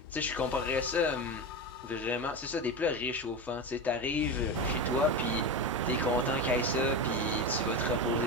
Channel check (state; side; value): normal; both; correlation 0.21